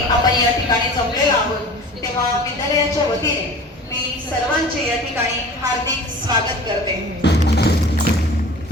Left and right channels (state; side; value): normal; both; correlation 0.41